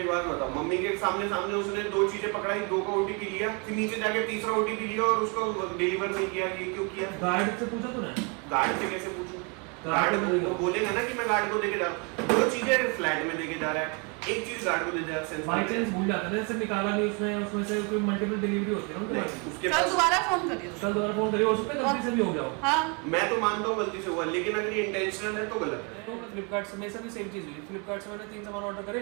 बात बताओ, मम्मी के सामने सामने उसने 2 चीजें पकड़ाई, 2 का OTP लिया, फिर नीचे जाके तीसरा OTP लिया और उसको डिलीवर नहीं किया, ये क्यों किया? गार्ड से पूछा तूने? गार्ड से कैसे पूछूं? गार्ड गार्ड को बोलेगा ना कि मैं गार्ड को देके जा रहा हूँ। 2 चीजें फ्लैट में देके जा रहा है, एक चीज गार्ड को दे जा रहा है। बाई चांस भूल जाता है, जैसे निकाला नहीं उसमें से कोई मल्टीपल डिलीवरी होती है ना उनके पास। उसके कल पास दोबारा फोन करिए उसको। कल दोबारा फोन करिए, हो सकता है गलती से भी हो गया हो। हाँ मैं तो मानता हूँ गलती से हुआ, लेकिन अगर ये इंटेंशनल है तो गलत है। तो फ्लिपकार्ट से मेरे साथ भी सेम चीज़ हुई। फ्लिपकार्ट से मैंने 3 सामान ऑर्डर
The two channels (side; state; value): left; quieter; 32.9 dB